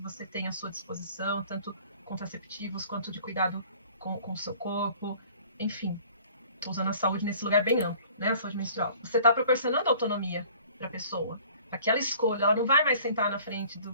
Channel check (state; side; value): inverted; both; correlation -0.51